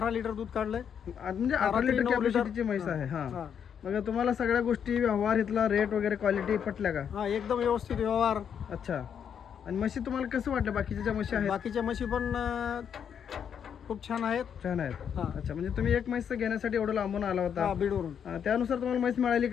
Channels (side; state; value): right; quieter; 8.0 dB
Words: लिटर दूध काढलंय. म्हणजे 18 लिटर कॅपॅसिटीची म्हैस आहे. हा, मग तुम्हाला सगळ्या गोष्टी, व्यवहार, इथला रेट वगैरे, क्वालिटी पटल्या का? हा, एकदम व्यवस्थित व्यवहार. अच्छा, आणि म्हशी तुम्हाला कसं वाटलं? बाकीच्या ज्या म्हशी आहेत, बाकीच्या म्हशी पण खूप छान आहेत. छान आहेत. अच्छा, म्हणजे तुम्ही एक म्हैस घेण्यासाठी एवढं लांबून आला होता? बीडवरून. त्यानुसार तुम्हाला म्हैस मिळाली